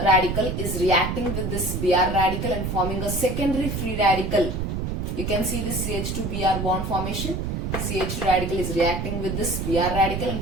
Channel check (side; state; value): right; noise; rumble, 2 dB below the sound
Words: reacting with this Br radical and forming a secondary free radical. You can see this CH2Br bond formation. CH2 radical is reacting with this Br radical